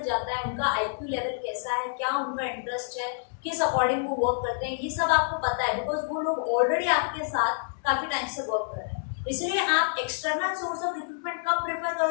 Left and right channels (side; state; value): right; silent; 59 dB below the other